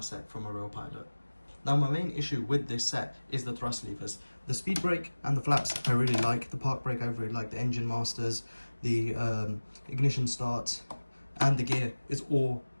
set from a real pilot. Now my main issue with this set is the thrust levers. The speed brake and the flaps I really like, the park brake I really like, the engine masters, the ignition start and the gear is all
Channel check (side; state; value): both; inverted; correlation -1.00